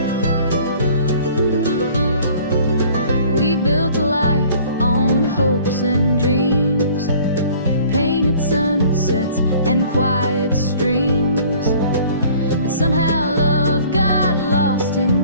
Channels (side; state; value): both; inverted; correlation -0.51